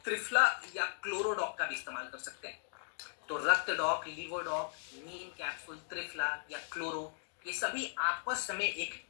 त्रिफला या क्लोरोडॉग का भी इस्तेमाल कर सकते हैं। तो रक्तडॉग, लिवोडॉग, नीम कैप्सूल, त्रिफला या क्लोरो, ये सभी आपस में एक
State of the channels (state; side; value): silent; right; digital silence